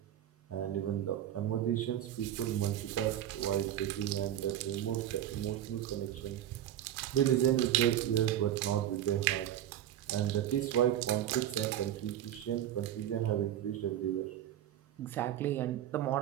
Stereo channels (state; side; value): quieter; left; 11.6 dB